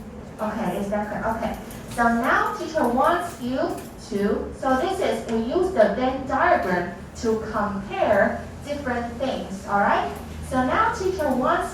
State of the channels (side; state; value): both; identical; correlation 1.00